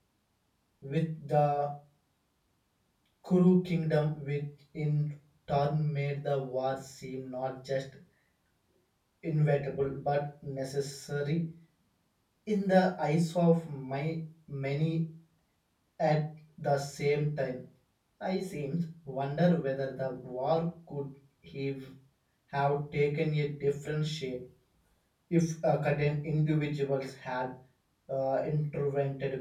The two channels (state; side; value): identical; both; correlation 1.00